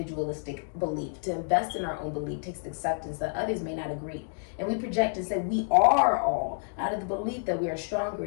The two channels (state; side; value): silent; right; digital silence